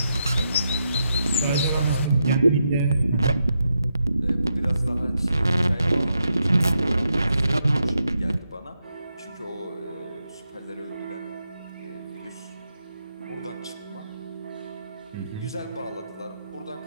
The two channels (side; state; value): both; inverted; correlation -0.83